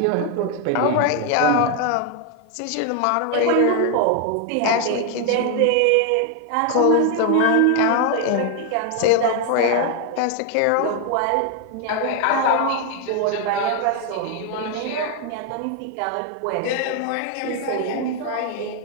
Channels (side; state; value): both; different; correlation 0.00